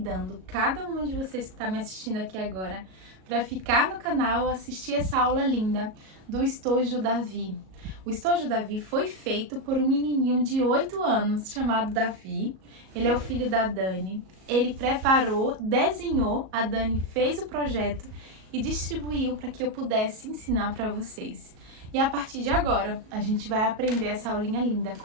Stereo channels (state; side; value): late; left; 37 ms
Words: cada uma de vocês que tá me assistindo aqui agora para ficar no canal assistir essa aula linda do Estojo Davi. O Estojo Davi foi feito por um menininho de 8 anos chamado Davi. Ele é o filho da Dani. Ele preparou, desenhou, a Dani fez o projeto e distribuiu para que eu pudesse ensinar para vocês. E a partir de agora, a gente vai aprender essa aulinha linda